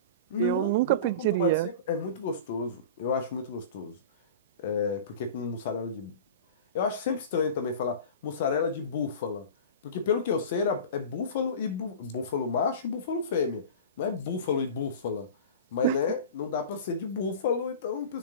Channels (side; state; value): both; inverted; correlation -0.32